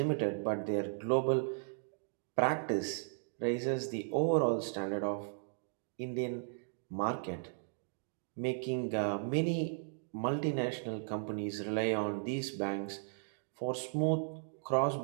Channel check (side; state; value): left; silent; digital silence